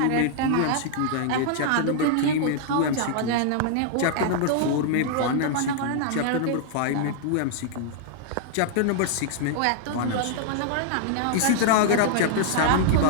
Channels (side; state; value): both; different; correlation -0.01